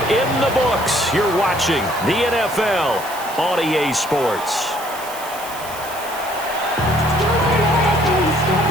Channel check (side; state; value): right; noise; hiss, 14 dB below the sound